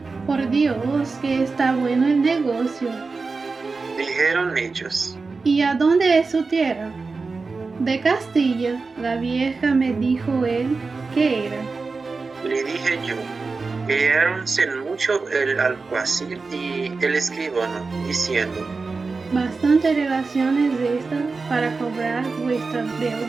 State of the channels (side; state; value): left; quieter; 4.2 dB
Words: Por Dios, que está bueno el negocio. Dijeron ellos: ¿Y a dónde es su tierra? De Castilla, la vieja me dijo él que era. Le dije yo, quedáronse mucho el alguacil y el escribano, diciendo, Bastantes relaciones de esta para cobrar vuestra